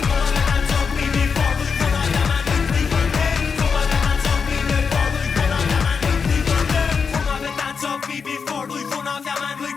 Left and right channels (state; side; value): quieter; right; 5.7 dB